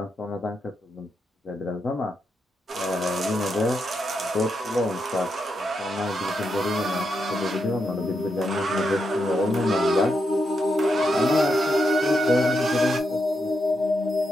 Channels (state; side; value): normal; both; correlation 0.83